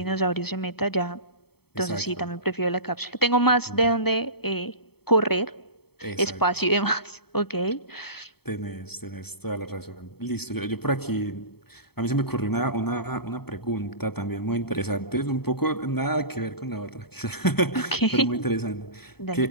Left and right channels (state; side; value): late; right; 0.96 ms